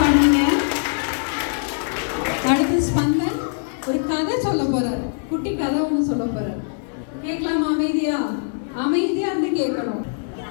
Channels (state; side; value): silent; right; digital silence